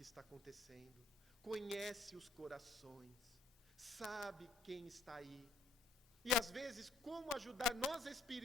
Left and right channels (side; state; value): right; quieter; 3.9 dB